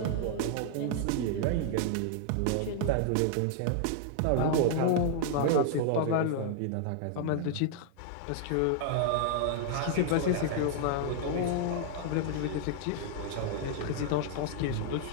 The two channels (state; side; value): different; both; correlation -0.01